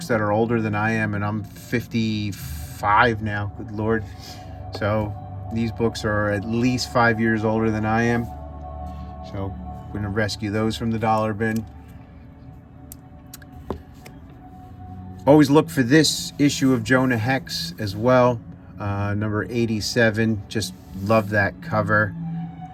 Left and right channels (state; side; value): identical; both; correlation 1.00